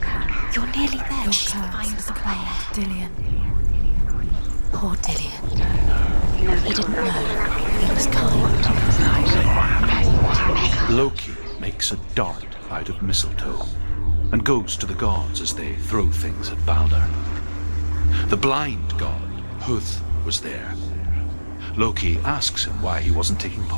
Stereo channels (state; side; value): inverted; both; correlation -1.00